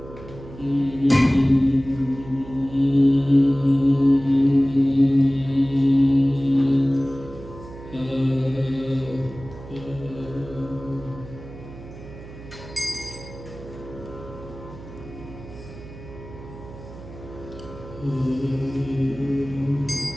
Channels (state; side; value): noise; right; hum, 15 dB below the sound